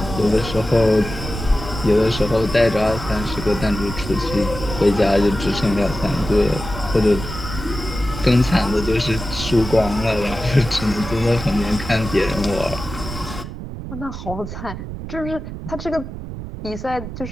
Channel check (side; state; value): right; noise; rumble, 9 dB below the sound